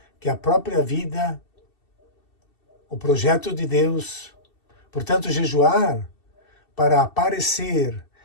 que a própria vida, o projeto de Deus. Portanto, jejuar para aparecer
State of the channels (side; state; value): right; late; 2.7 ms